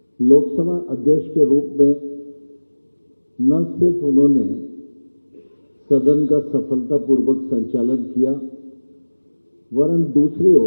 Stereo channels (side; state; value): both; inverted; correlation -1.00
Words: लोकसभा अध्यक्ष के रूप में न सिर्फ उन्होंने सदन का सफलतापूर्वक संचालन किया, वरन दूसरी